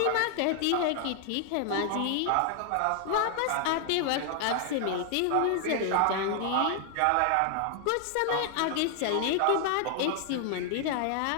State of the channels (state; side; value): different; both; correlation 0.00